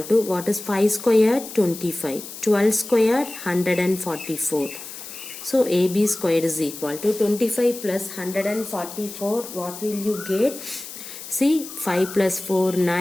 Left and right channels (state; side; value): noise; left; hiss, 12 dB below the sound